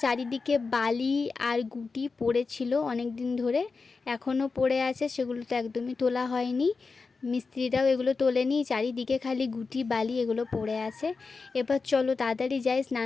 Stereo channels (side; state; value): right; quieter; 4.4 dB